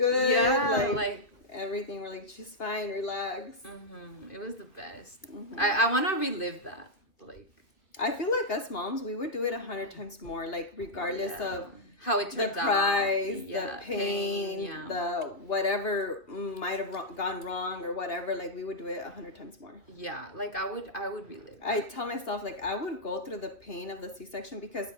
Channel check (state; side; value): late; right; 2.5 ms